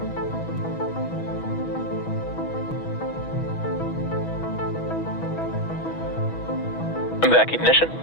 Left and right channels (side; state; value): right; late; 6.2 ms